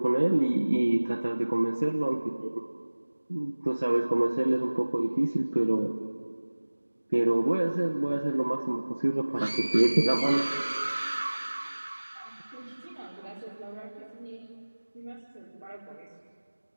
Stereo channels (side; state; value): both; inverted; correlation -1.00